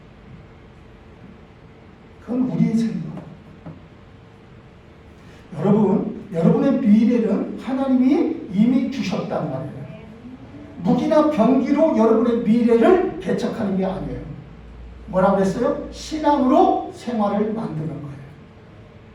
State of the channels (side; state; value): both; identical; correlation 1.00